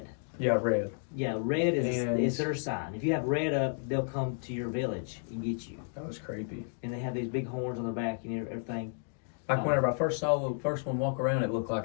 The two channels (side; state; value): right; silent; digital silence